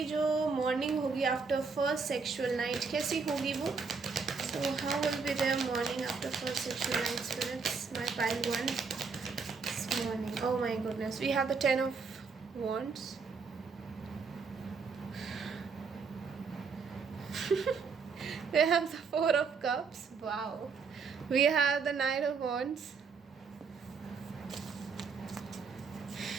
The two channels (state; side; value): quieter; left; 5.1 dB